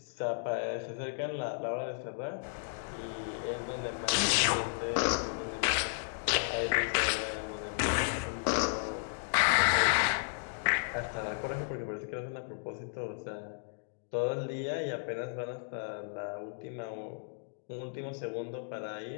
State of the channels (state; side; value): silent; right; digital silence